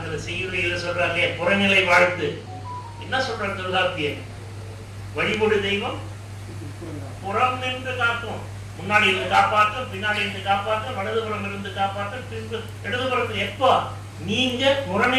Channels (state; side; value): identical; both; correlation 1.00